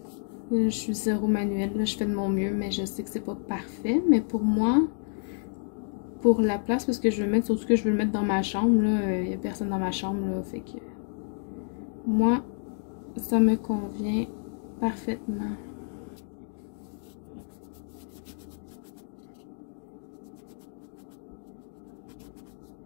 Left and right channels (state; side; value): silent; right; digital silence